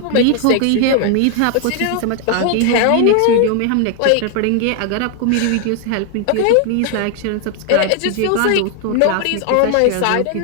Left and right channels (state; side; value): different; both; correlation 0.00